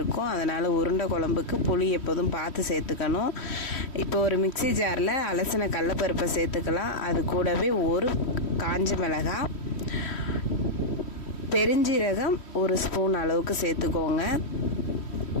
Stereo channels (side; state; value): right; late; 3.1 ms